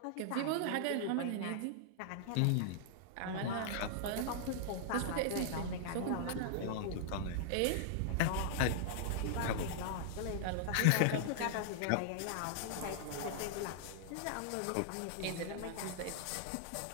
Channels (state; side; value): different; both; correlation -0.01